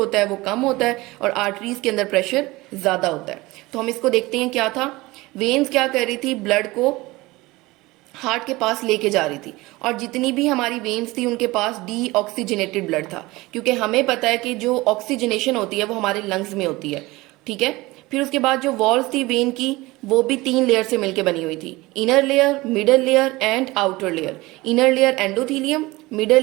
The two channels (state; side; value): quieter; left; 20.9 dB